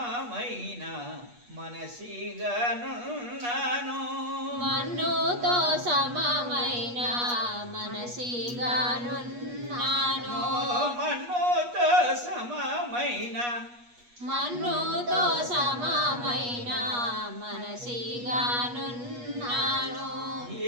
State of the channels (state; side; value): late; left; 8.3 ms